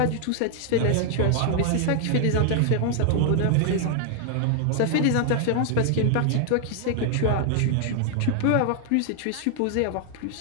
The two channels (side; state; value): both; different; correlation 0.00